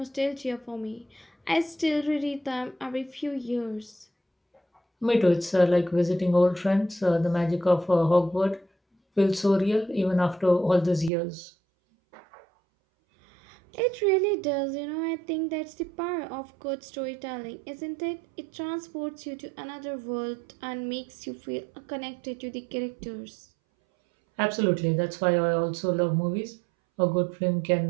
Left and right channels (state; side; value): drops out; left; at 11.1 s